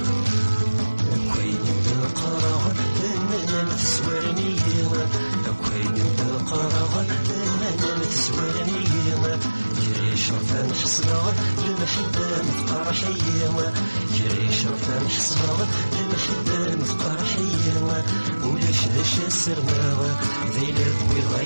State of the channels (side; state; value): both; inverted; correlation -1.00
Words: شرفان حصلها المحبة مفقر حيوة جري شرفان حصلها المحبة مفقر حيوة ولاش داش السرماوة ذي لبوي